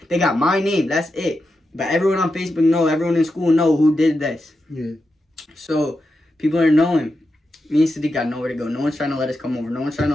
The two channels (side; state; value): both; normal; correlation 0.88